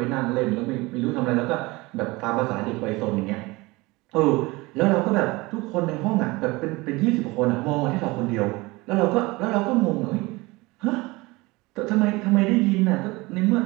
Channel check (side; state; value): left; quieter; 22.6 dB